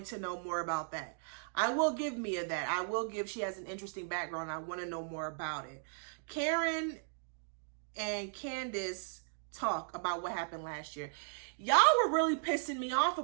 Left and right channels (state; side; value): silent; left; digital silence